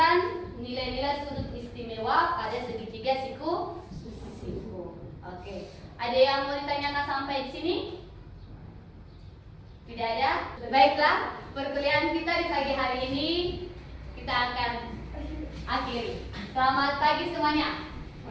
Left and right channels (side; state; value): both; identical; correlation 1.00